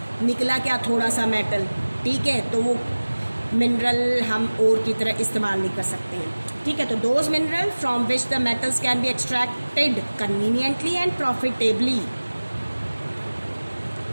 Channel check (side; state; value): both; inverted; correlation -1.00